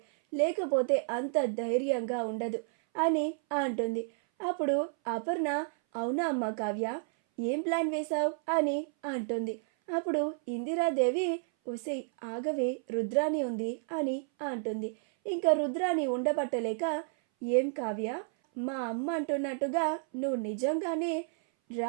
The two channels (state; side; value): silent; left; 57 dB below the other